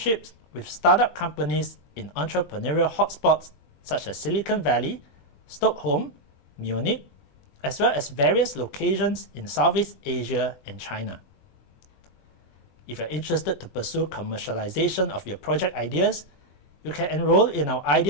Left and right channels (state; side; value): late; right; 22 ms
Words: with startup companies in entrepreneurial hotspots such as Silicon Valley, Stockholm, Munich, as well as various locations in Southeast Asia and China. If you're interested to pursue commercialization of your project ideas, you can enroll in our